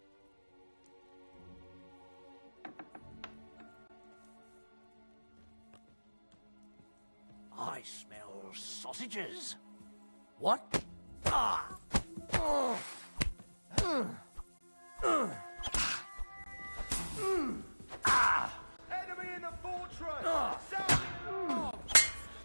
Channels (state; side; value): inverted; both; correlation -1.00